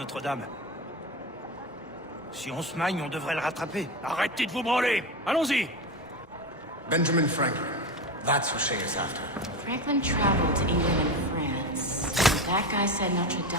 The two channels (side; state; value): both; normal; correlation 0.22